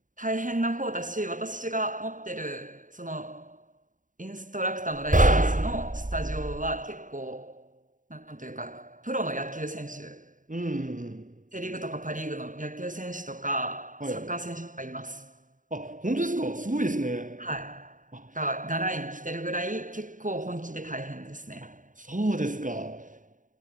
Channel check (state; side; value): late; left; 0.38 ms